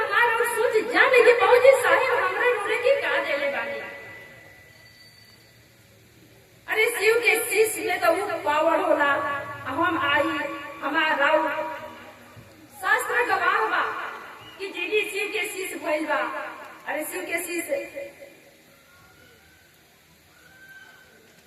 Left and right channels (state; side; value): identical; both; correlation 1.00